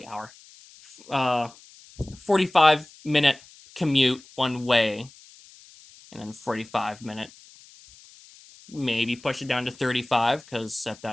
45-minute commute one way, and then 45-minute, maybe push it down to 35, because at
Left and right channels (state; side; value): noise; left; hiss, 23 dB below the sound